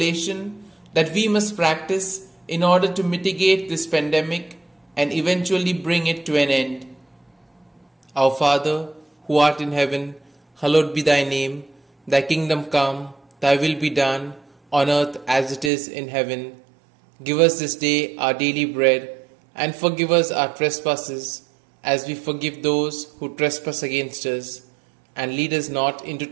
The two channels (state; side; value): drops out; left; at 15.7 s